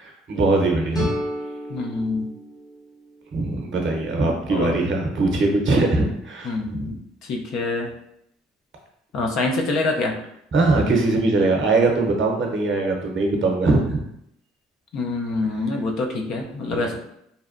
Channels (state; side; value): normal; both; correlation 0.64